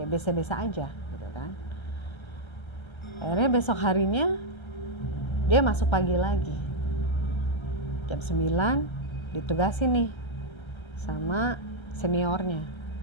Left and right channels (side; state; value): right; late; 1.3 ms